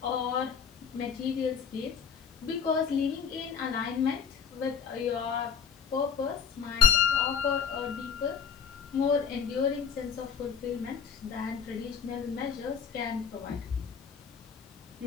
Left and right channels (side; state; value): right; quieter; 6.8 dB